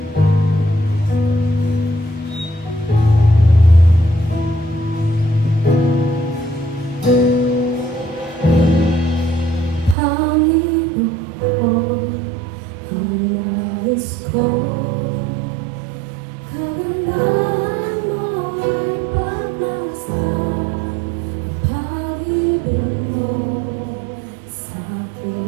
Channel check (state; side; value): drops out; left; at 10.0 s